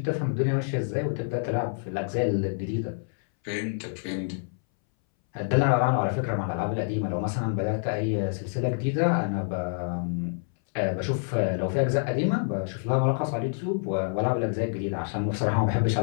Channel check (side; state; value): right; silent; 60 dB below the other